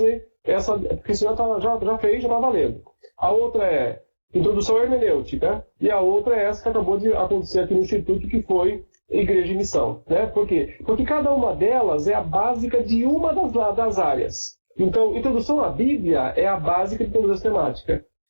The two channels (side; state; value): both; inverted; correlation -1.00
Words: essa, porque senão já fez, já está valendo. A outra é introdução à hermenêutica, e a outra é essa que acabou de acontecer aqui no Instituto, que foi Igreja e Missão. Né? Por quê? Porque cada uma delas é a básica de uma das áreas. Então, introdução à Bíblia é a básica de toda a sistemática.